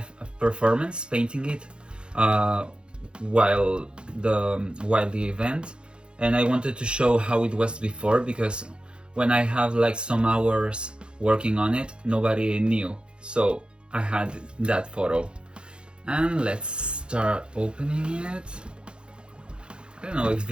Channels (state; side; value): late; left; 0.053 ms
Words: performance painting it while the event, and I wanted to show how it was before, because when I have like some hours working on it, nobody knew, so I had that photo. And let's start opening it. I don't know if